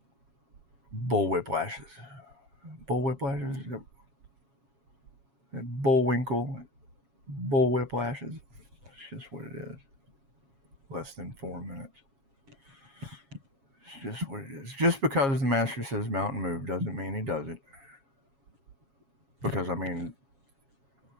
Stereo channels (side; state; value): left; late; 7.3 ms